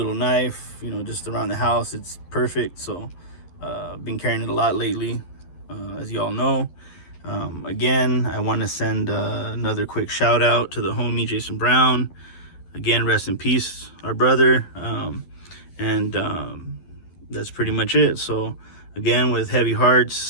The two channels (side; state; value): right; late; 11 ms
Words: knife, you know, just around the house. It's perfect. So I've been carrying it a lot lately, as you all know. Again, I want to send another quick shout out to the homie Jason Brown. Again, rest in peace, our brother. That's pretty much it. So again, with heavy